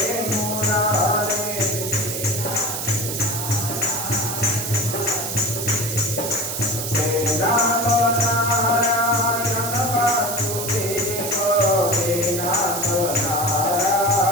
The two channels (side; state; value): right; noise; hiss, 4 dB below the sound